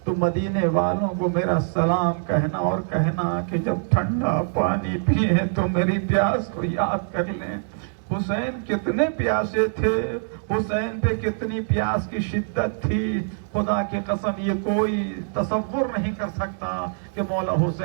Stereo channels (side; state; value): left; silent; digital silence